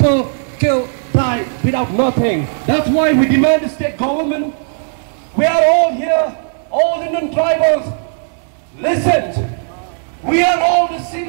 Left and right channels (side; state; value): left; silent; digital silence